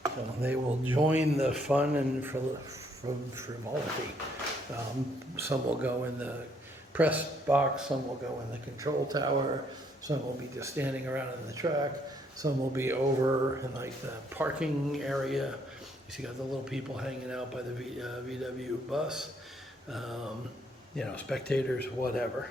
So they will join the fun and frivolity. Some will go in the press box, some will go in the control tower, some will be just standing around in the track, some will be over in like the parking area. You see, got the little people hanging out by the VW bus, you know, spectators, whatever.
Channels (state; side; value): normal; both; correlation 0.69